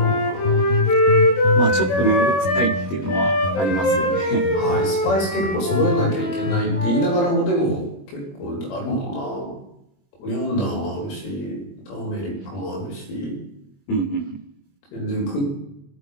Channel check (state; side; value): late; right; 21 ms